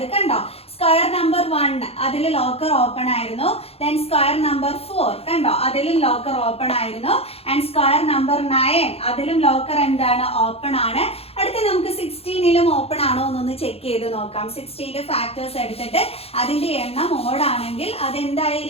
കണ്ടോ? സ്ക്വയർ നമ്പർ 1 അതിൽ ലോക്കർ ഓപ്പൺ ആയിരുന്നു. ദെൻ സ്ക്വയർ നമ്പർ 4 കണ്ടോ, അതിലും ലോക്കർ ഓപ്പൺ ആയിരുന്നു. ആൻഡ് സ്ക്വയർ നമ്പർ 9 അതിലും ലോക്കർ എന്താണ്? ഓപ്പൺ ആണ്. അടുത്ത നമുക്ക് 16ലും ഓപ്പൺ ആണോ എന്നൊന്ന് ചെക്ക് ചെയ്ത് നോക്കാം. 16ന്റെ ഫാക്ടേഴ്സ് എടുത്തിട്ട് അതിന്റെ എണ്ണം ഓഡ് ആണെങ്കിൽ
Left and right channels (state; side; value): late; right; 0.29 ms